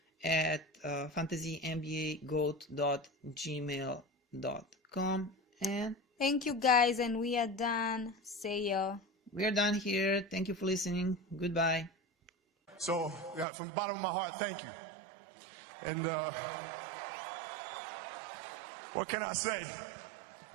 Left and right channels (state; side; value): drops out; left; at 13.5 s